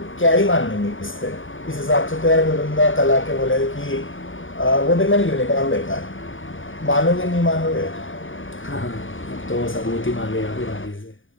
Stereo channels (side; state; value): right; late; 0.57 ms